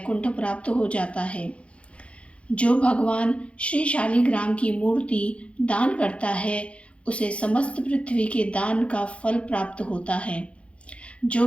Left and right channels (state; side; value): late; right; 0.061 ms